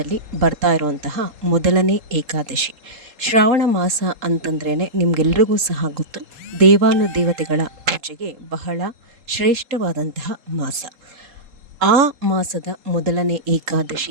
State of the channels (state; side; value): late; left; 3.8 ms